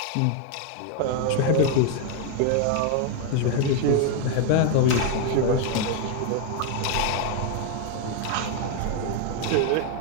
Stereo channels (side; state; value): both; different; correlation 0.01